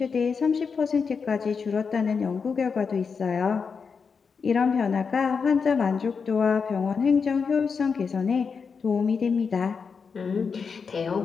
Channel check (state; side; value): quieter; right; 5.6 dB